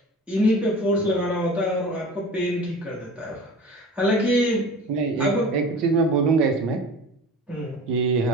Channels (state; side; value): normal; both; correlation 0.38